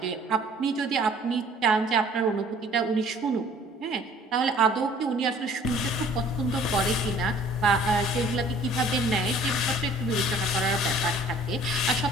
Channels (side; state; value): both; normal; correlation 0.53